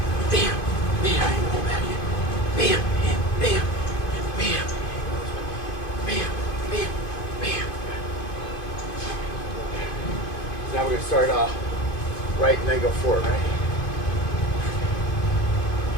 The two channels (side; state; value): right; late; 2.5 ms